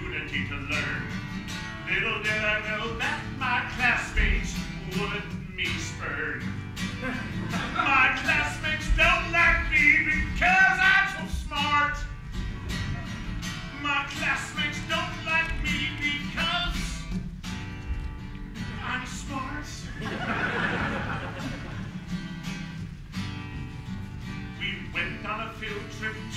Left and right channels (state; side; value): identical; both; correlation 1.00